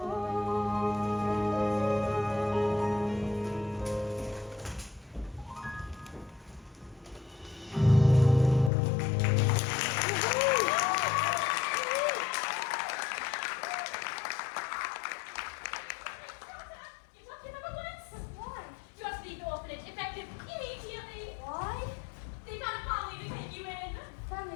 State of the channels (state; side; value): drops out; right; at 8.7 s